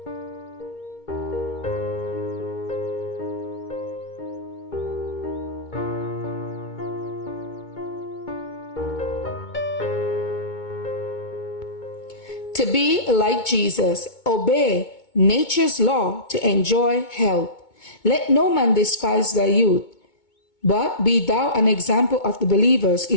be like Jesus, obey nature's law to enjoy health. Let no man despise thy youth, but be thou an example of the believers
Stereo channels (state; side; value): late; right; 2.2 ms